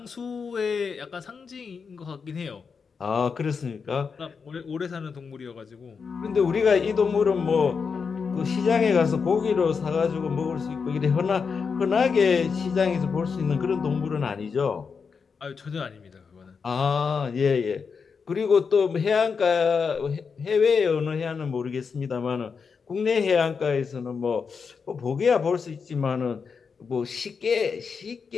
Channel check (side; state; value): right; quieter; 5.6 dB